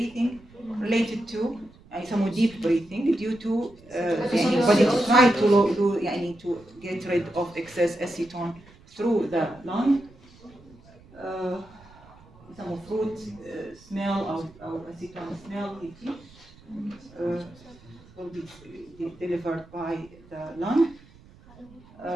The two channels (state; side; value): noise; right; rumble, 24 dB below the sound